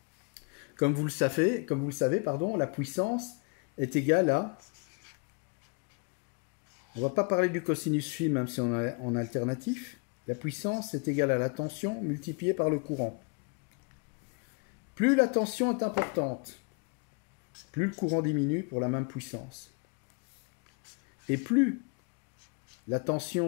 Comme vous le savez, la puissance est égale à... On ne va pas parler du cosinus phi, même si on est en alternatif. La puissance est égale à la tension multipliée par le courant. Plus la tension est importante, plus le courant diminue pour la même puissance. Et plus la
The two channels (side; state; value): right; quieter; 35.0 dB